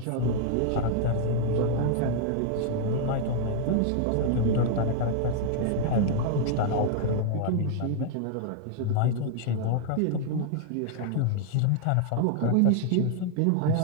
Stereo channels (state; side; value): different; both; correlation 0.00